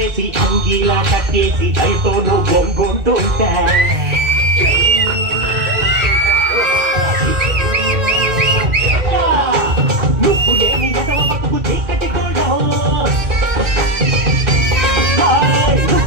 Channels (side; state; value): left; late; 2.1 ms